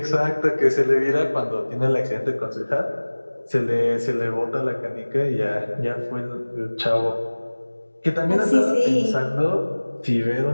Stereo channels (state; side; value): inverted; both; correlation -1.00